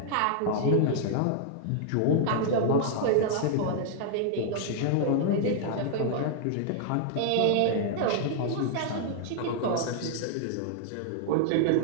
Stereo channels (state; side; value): different; both; correlation -0.01